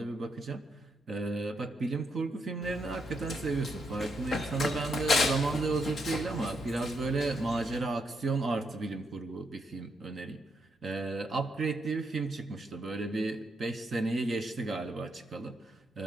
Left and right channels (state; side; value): normal; both; correlation 0.78